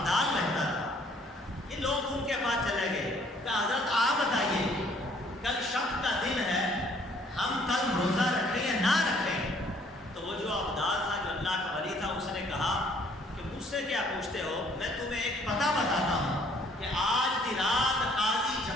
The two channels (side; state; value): both; normal; correlation 0.61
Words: رہتا تھا، یہ لوگ ان کے پاس چلے گئے کہ حضرت آپ بتائیے کل شک کا دن ہے، ہم کل روزہ رکھیں یا نہ رکھیں؟ تو وہ جو ابدال تھا، جو اللہ کا ولی تھا، اس نے کہا کہ مجھ سے کیا پوچھتے ہو، میں تمہیں ایک پتہ بتاتا ہوں کہ آج کی رات قاضی